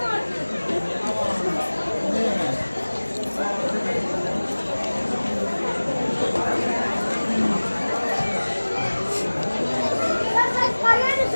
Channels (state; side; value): inverted; both; correlation -1.00